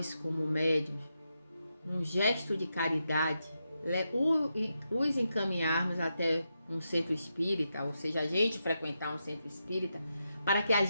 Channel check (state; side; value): inverted; both; correlation -0.86